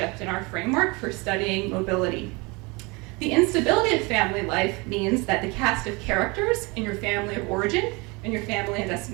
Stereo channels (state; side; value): quieter; left; 26.9 dB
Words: in our framework for studying mobility. The instability of family life means that the cast of characters in your family of origin and your family and